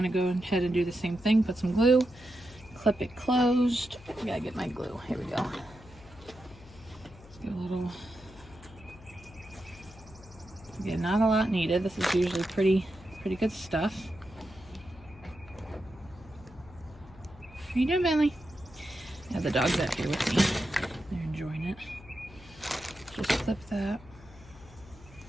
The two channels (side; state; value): left; noise; hum, 20 dB below the sound